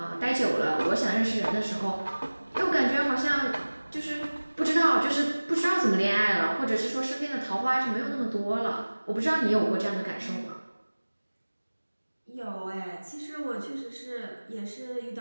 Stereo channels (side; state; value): both; inverted; correlation -1.00